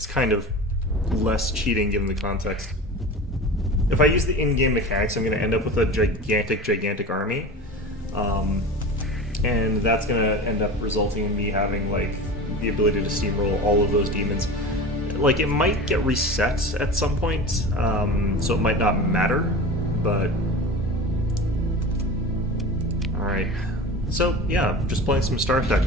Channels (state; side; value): normal; both; correlation 0.32